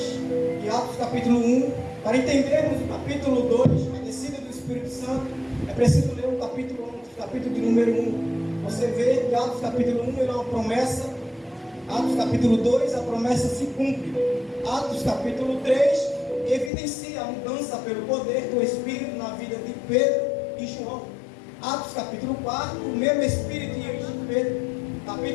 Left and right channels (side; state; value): right; drops out; at 16.7 s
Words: e Atos capítulo 1, para entendermos o capítulo 2, a descida do Espírito Santo, é preciso ler o capítulo 1, o capítulo de número 1. Você vê que Atos capítulo 1 ele é uma promessa, Atos capítulo 2 a promessa se cumpre. Atos capítulo 3 evidencia a mudança pelo poder do Espírito na vida de Pedro e João. Atos capítulo 4, o mesmo Espírito enche Pedro.